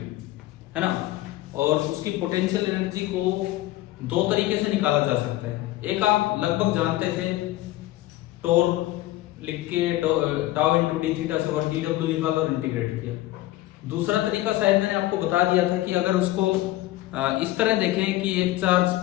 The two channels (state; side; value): quieter; right; 16.4 dB